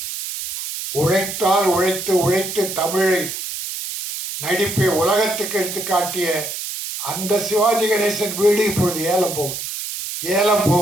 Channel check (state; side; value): noise; right; hiss, 6 dB below the sound